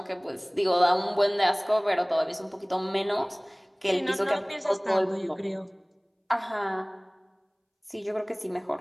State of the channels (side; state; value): both; identical; correlation 1.00